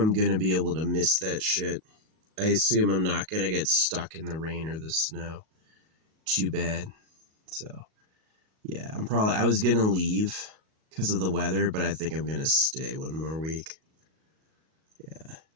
going to be able to miss that shit. I assume I'm not going to get stuck in the rain or the snow. Too bad. So yeah, I was going to leave because of the weather, but I think I'm going to stay one more week. Yeah.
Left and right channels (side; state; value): left; late; 38 ms